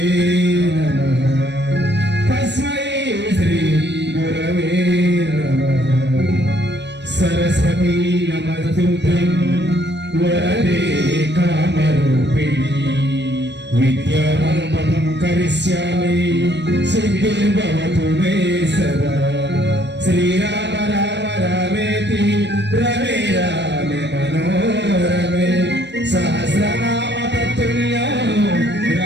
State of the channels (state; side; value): late; left; 0.51 ms